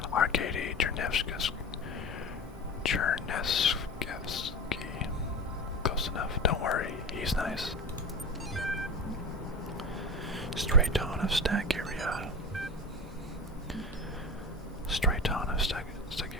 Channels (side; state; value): both; normal; correlation 0.29